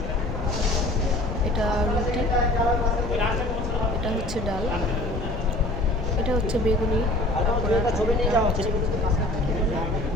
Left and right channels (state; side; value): noise; left; rumble, 8 dB below the sound